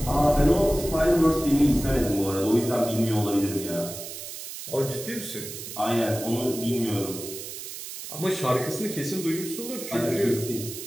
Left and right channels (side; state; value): right; noise; hiss, 10 dB below the sound